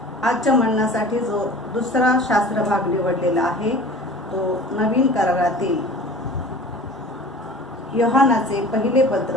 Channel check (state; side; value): normal; both; correlation 0.42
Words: आजच्या म्हणण्यासाठी जो दुसरा शास्त्रभाग निवडलेला आहे तो नवीन करारातील योहानाचे पहिले